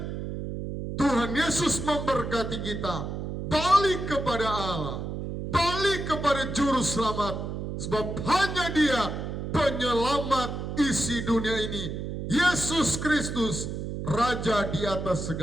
Tuhan Yesus memberkati kita. Balik kepada Allah. Balik kepada Juru Selamat. Sebab hanya Dia penyelamat isi dunia ini. Yesus Kristus, Raja di atas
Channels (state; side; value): noise; right; hum, 5 dB below the sound